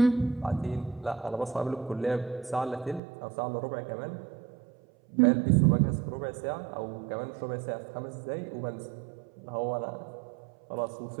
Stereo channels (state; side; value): drops out; left; at 3.0 s